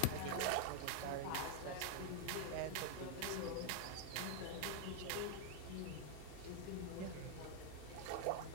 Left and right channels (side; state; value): both; different; correlation 0.00